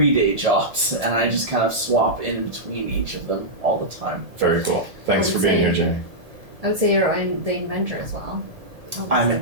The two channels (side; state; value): left; late; 1.7 ms